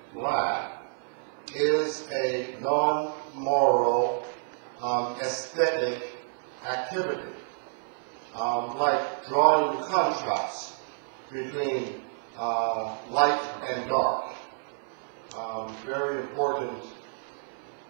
black is a non-moral aesthetic activity, like drawing contrast between light and dark. Very important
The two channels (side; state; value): left; silent; digital silence